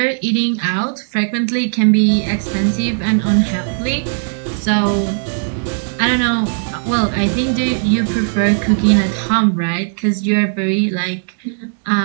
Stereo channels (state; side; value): silent; left; 68 dB below the other